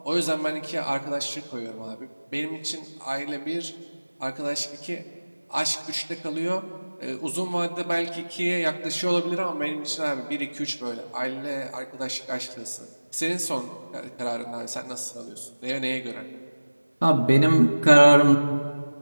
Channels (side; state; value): both; inverted; correlation -1.00